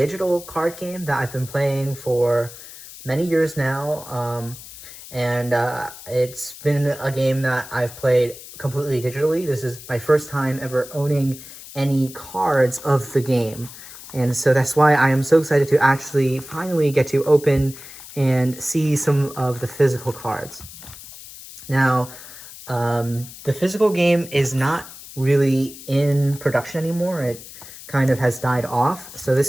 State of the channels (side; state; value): left; noise; hiss, 16 dB below the sound